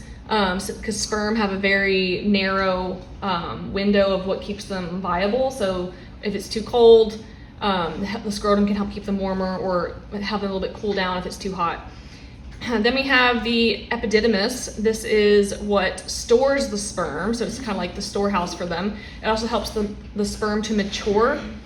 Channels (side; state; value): both; identical; correlation 1.00